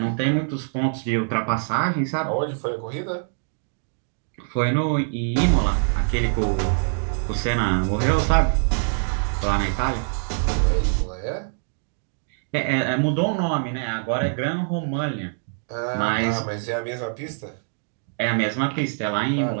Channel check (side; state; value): left; silent; digital silence